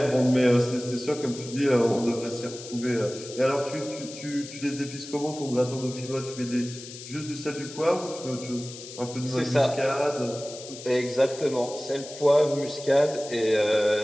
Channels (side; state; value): left; noise; hiss, 13 dB below the sound